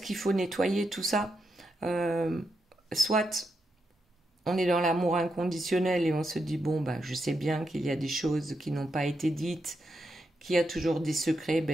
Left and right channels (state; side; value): normal; both; correlation 0.84